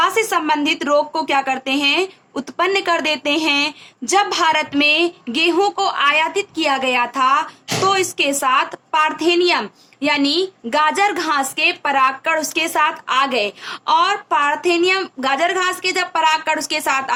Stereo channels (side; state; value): both; identical; correlation 1.00